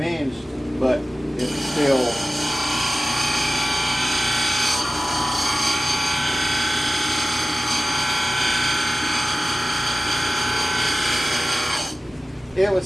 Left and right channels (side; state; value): both; normal; correlation 0.96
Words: but it's still... It would